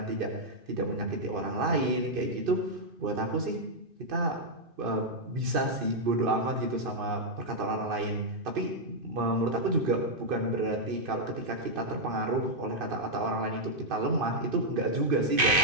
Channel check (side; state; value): left; late; 2.5 ms